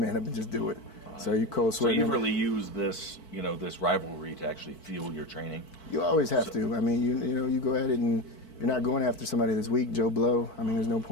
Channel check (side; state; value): right; late; 4.5 ms